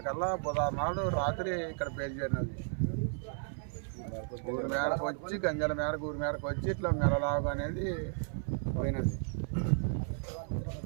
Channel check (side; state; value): left; silent; 55 dB below the other